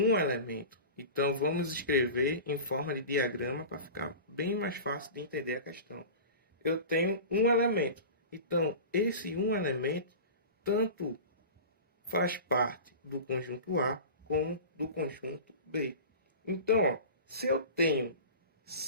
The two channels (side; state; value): both; inverted; correlation -0.34